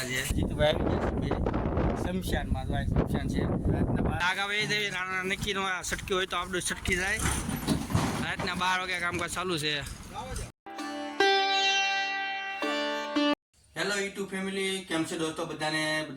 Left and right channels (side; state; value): both; identical; correlation 1.00